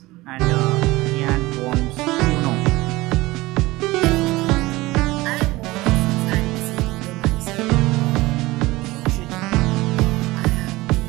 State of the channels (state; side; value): quieter; left; 20.0 dB